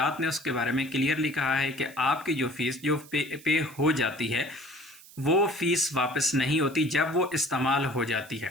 نے اس کے بارے میں کلیئرلی کہا ہے کہ آپ کی جو فیس جو پے ہو جاتی ہے وہ فیس واپس نہیں ہوتی جب وہ استعمال ہو جاتی ہے۔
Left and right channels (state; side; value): noise; right; hiss, 21 dB below the sound